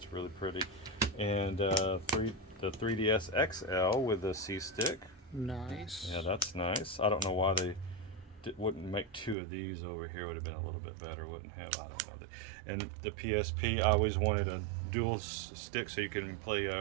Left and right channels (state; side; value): drops out; left; at 9.3 s